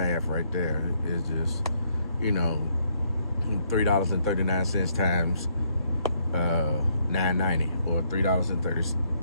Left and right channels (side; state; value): both; inverted; correlation -0.71